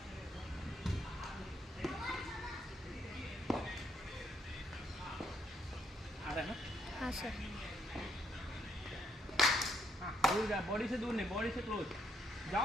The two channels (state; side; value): normal; both; correlation 0.74